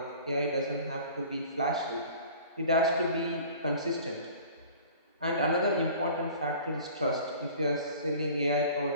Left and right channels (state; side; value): inverted; both; correlation -0.45